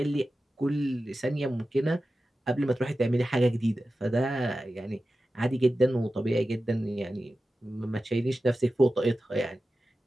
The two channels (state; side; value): normal; both; correlation 0.94